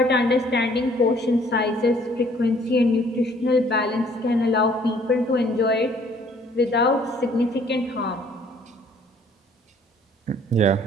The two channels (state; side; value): normal; both; correlation 0.59